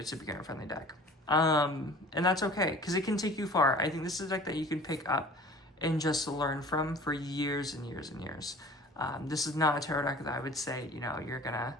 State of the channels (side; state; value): both; normal; correlation 0.45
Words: a beginner-friendly deck, and that's okay because it can take you far. I think this is a deck that you can pick up and just learn from for years and years and years. This is not a tarot deck that I would say you're gonna